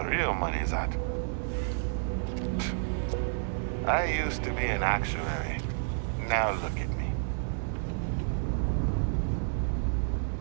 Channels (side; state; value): left; silent; 58 dB below the other